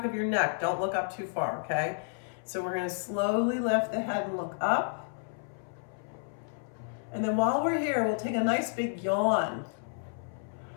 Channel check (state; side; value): silent; right; 57 dB below the other